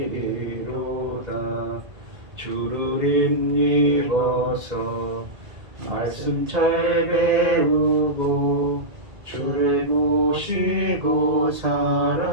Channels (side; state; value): left; late; 2.5 ms